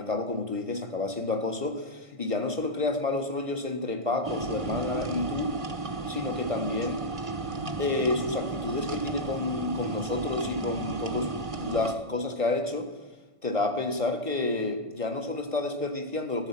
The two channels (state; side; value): late; left; 1.5 ms